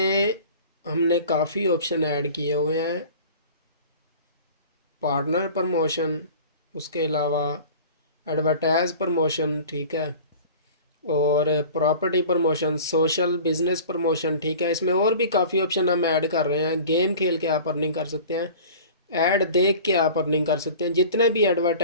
हमने काफ़ी ऑप्शन ऐड किए हुए हैं। पार्टनर प्रमोशन, उसके अलावा एडवर्टाइज प्रमोशन, ठीक है, और property promotion, social business promotion, ठीक है। इसमें और भी काफ़ी ऑप्शन हम ऐड कर रहे हैं। गेम खेल के आप अर्निंग कर सकते हैं, ऐड देख के आप अर्निंग कर सकते हैं। जितने भी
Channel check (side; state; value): both; inverted; correlation -0.41